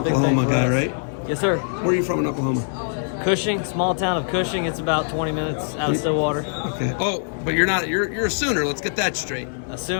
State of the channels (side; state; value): right; silent; 58 dB below the other